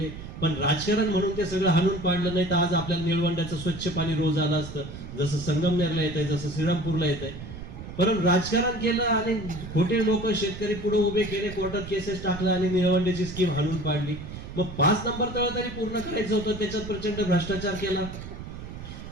पण राजकारण म्हणून ते सगळं हाणून पाडलं. नाही तर आज आपल्याला निळवंड्याचं स्वच्छ पाणी रोज आलं असतं, जसं संगमनेरला येत आहे, जसं श्रीरामपूरला येत आहे. परंतु राजकारण केलं आणि खोटे लोक शेतकरी पुढे उभे केले, कोर्टात केसेस टाकला आणि निळवंड्याची स्कीम हाणून पाडली. मग 5 नंबर तळ तरी पूर्ण करायचं होतं, त्याच्यात प्रचंड भ्रष्टाचार केला.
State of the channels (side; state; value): right; noise; rumble, 11 dB below the sound